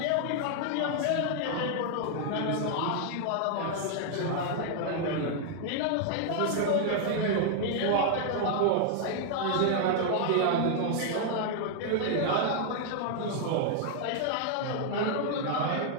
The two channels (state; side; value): different; both; correlation 0.00